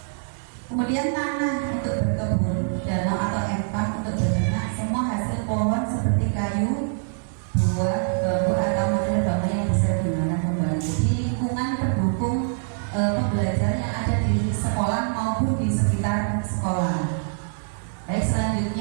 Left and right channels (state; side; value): silent; left; digital silence